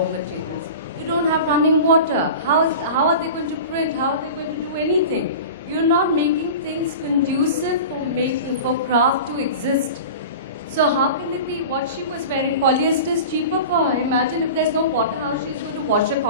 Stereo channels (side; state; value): both; inverted; correlation -0.33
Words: materials. You don't have running water. How are they going to print? How are they going to do anything? You're not making things conducive for craft to exist. So how can it be what she was wearing? Polyester is cheaper for her. Imagine if there's no water, how she's going to wash her